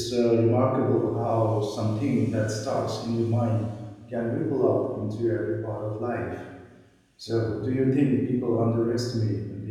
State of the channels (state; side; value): identical; both; correlation 1.00